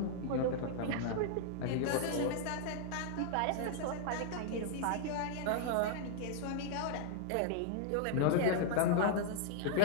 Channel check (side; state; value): both; different; correlation -0.01